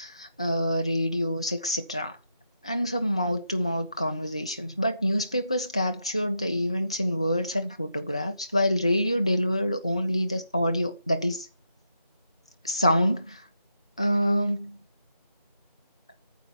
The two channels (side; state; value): both; inverted; correlation -0.82